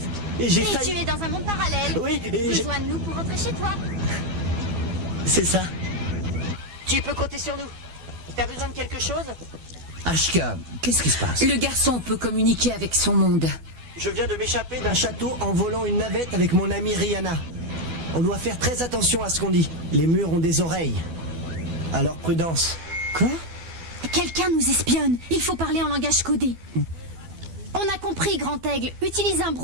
Et j'ai Et failli... tu es dans un monde parallèle. Oui, et Rejoins-nous pour rentrer chez toi. c'est ça. Tu peux compter sur nous. T'as besoin de quelque chose? Ashka, qu'est-ce qui se passe? Le garçon peut communiquer avec son monde. Je viens de m'échapper d'un château en volant une navette avec mon amie Rihanna. On doit faire très attention à ce qu'on dit. Les murs ont des oreilles. Alors prudence. Quoi? Quelqu'un nous espionne. Il faut parler en langage codé. On a compris, Grand Aigle. Utilise un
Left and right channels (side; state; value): left; late; 12 ms